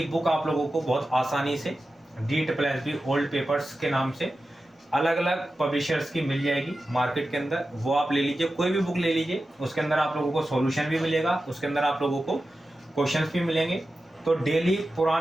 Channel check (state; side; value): normal; both; correlation 0.93